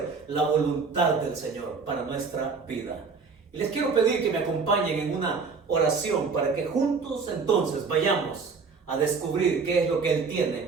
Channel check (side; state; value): left; quieter; 4.9 dB